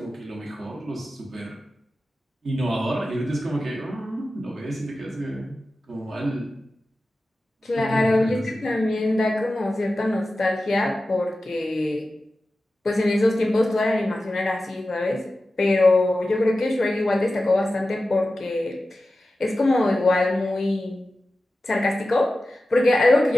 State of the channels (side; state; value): both; normal; correlation 0.94